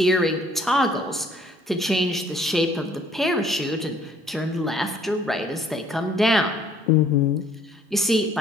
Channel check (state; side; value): normal; both; correlation 0.59